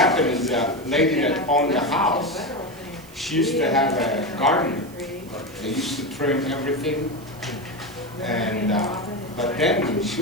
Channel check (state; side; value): noise; right; hiss, 23 dB below the sound